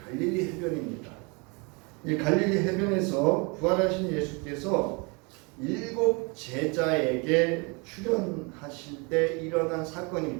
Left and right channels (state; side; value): quieter; left; 30.4 dB